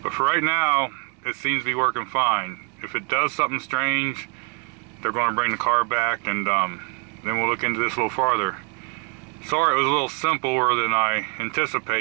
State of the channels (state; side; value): quieter; left; 33.7 dB